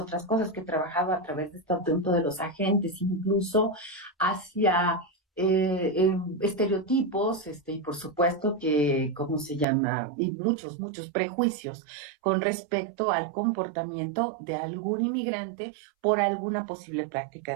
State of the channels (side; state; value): left; drops out; at 9.7 s